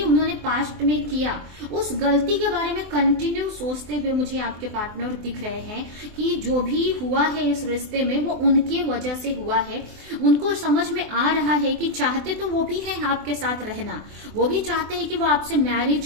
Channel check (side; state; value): left; late; 24 ms